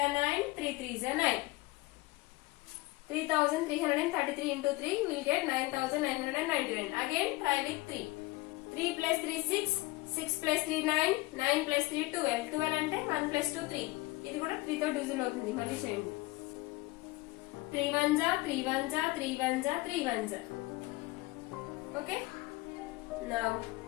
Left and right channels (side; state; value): right; quieter; 21.3 dB